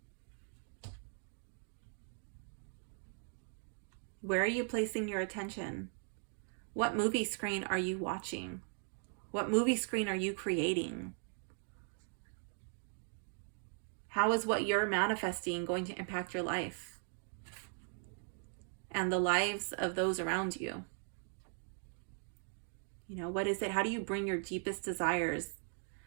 Where are you placing your attention? What movie screen are you watching? What movie screen are you creating? How is what you're manifesting going to impact your life and the lives of those around you? What is it? How do you bring your deepest desires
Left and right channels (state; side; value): silent; left; 52 dB below the other